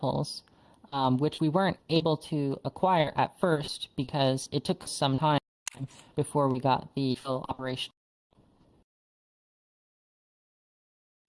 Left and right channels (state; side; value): identical; both; correlation 1.00